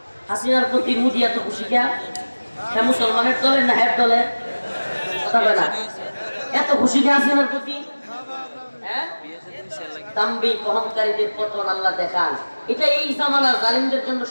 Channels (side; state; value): both; inverted; correlation -1.00